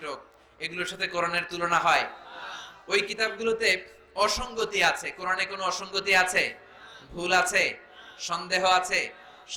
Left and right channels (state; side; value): identical; both; correlation 1.00